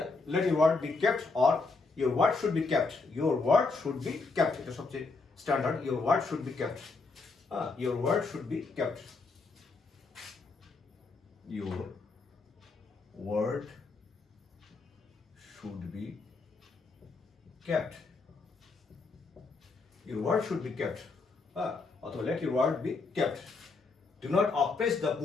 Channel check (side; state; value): right; quieter; 4.0 dB